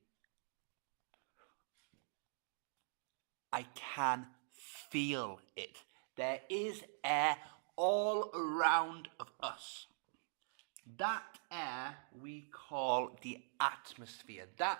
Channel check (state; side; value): silent; left; digital silence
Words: I can feel it. There is air all around of us. That air we call the atmosphere.